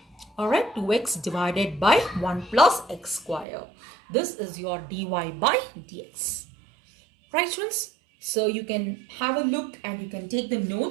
Alright, 2x divided by 1 plus x square. This is your dy by dx. Right, students? So you can have a look and you can take the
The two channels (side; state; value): left; drops out; at 3.5 s